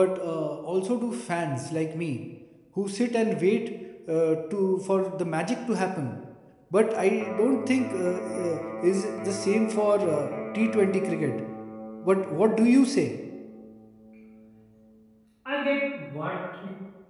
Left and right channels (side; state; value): both; identical; correlation 1.00